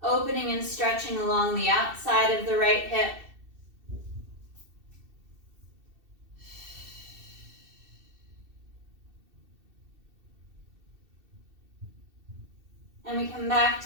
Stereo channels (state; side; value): late; left; 2.7 ms